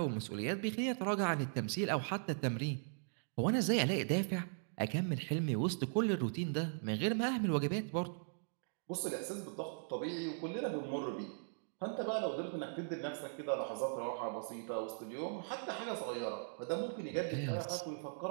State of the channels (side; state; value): left; silent; digital silence